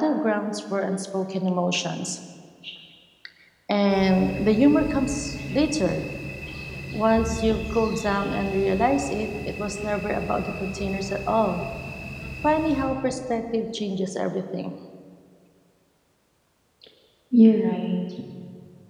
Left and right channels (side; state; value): both; identical; correlation 1.00